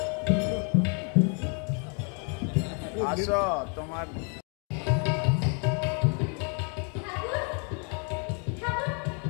আসো তোমার ঠাকুর, ঠাকুর,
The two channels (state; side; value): quieter; right; 38.5 dB